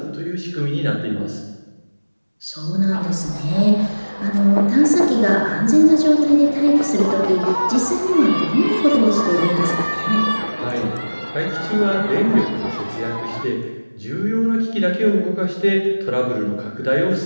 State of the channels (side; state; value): both; inverted; correlation -1.00